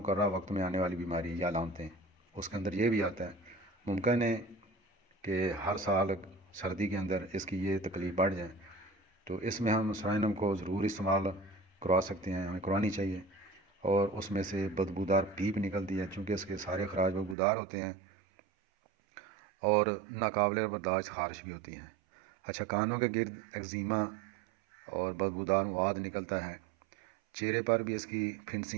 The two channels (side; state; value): left; drops out; at 17.4 s